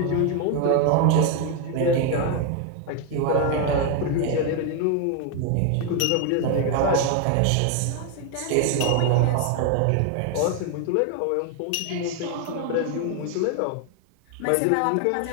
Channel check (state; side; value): different; both; correlation 0.01